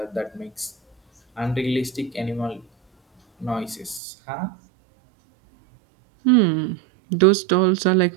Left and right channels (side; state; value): left; drops out; at 4.0 s